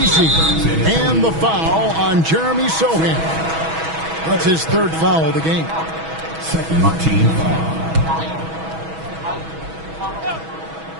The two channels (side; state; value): left; late; 6.2 ms